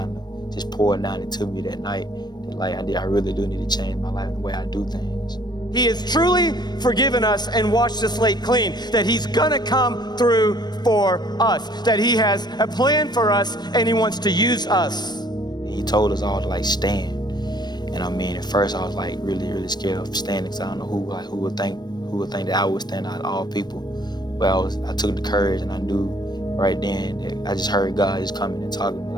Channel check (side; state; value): right; late; 0.20 ms